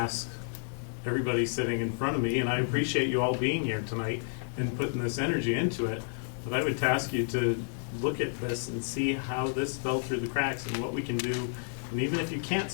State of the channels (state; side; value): silent; right; digital silence